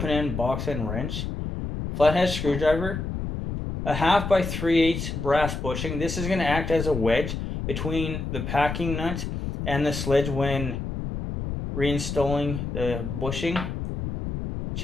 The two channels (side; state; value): left; noise; rumble, 5 dB below the sound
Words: box end wrench, flathead screwdriver, a 1/2 by 3/8 brass bushing. This is going to act as a wedge between the packing nut and the sledge when reinstalling the bushing.